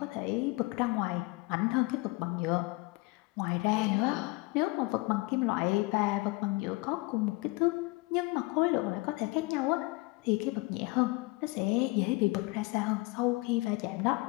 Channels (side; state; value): right; quieter; 24.1 dB